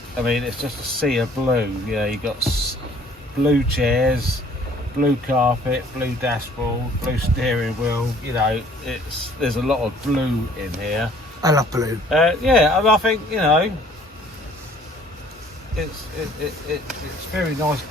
I mean, it's just a sea of blue. You know, you've got blue chairs, blue carpet, blue dashboard, blue steering wheel. You know, there's a lot of blue in here. I love blue. Yeah, I think, you know, it's a very nice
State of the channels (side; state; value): both; normal; correlation 0.57